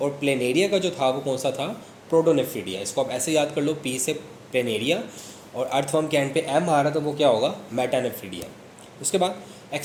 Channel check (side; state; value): both; identical; correlation 1.00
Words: प्लेनेरिया का जो था वो कौन सा था? प्रोटोनेफ्रीडिया। इसको आप ऐसे याद कर लो, पी से प्लेनेरिया और अर्थवर्म के एंड पे एम आ रहा, तो वो क्या होगा? मेटानेफ्रीडिया। उसके बाद